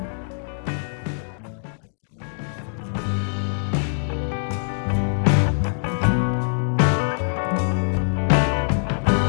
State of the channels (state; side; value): silent; right; digital silence